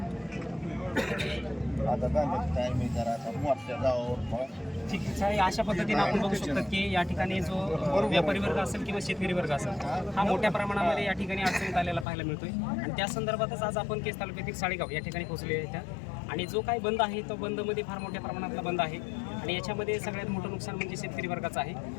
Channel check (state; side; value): drops out; right; at 12.1 s